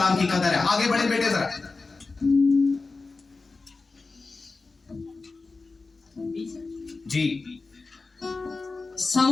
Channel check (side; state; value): right; quieter; 3.9 dB